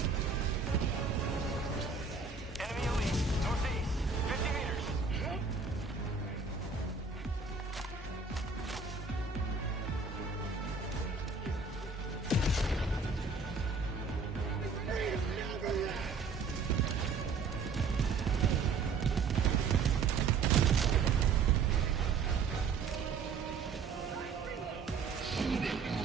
Enemy elite. Northeast. 50 meters.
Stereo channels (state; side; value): quieter; left; 4.9 dB